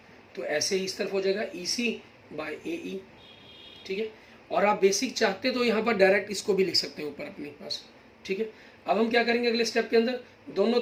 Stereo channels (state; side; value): identical; both; correlation 1.00